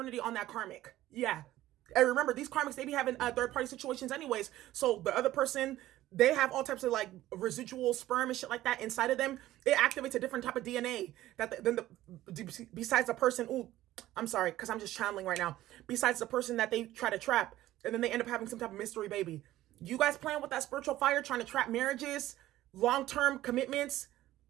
on that karmic. Yeah. And remember, these karmics, they be having third-party situations anyways. So the other person, they have all types of like residual sperm and shit like that inside of them. It activates a different type of DNA besides the person. Ooh, I'm sorry, because I'm just channeling right now. Besides the person that they try to trap, and then they end up having some type of mystery baby. You guys playing with that spiritual fire, trying to trap marriages, long-term commitments,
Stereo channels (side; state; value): left; quieter; 14.9 dB